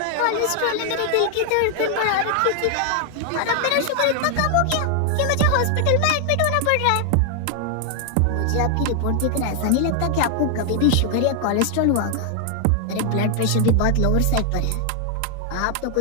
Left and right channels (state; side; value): different; both; correlation 0.00